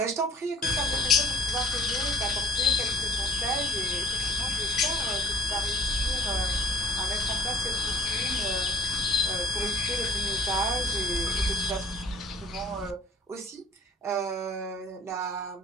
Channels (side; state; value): both; normal; correlation 0.50